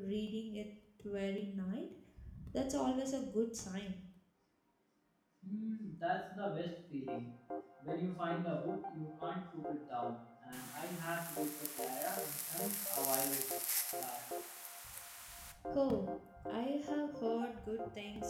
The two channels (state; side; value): identical; both; correlation 1.00